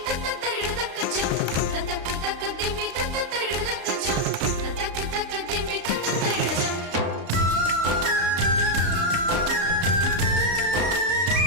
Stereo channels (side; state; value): left; late; 34 ms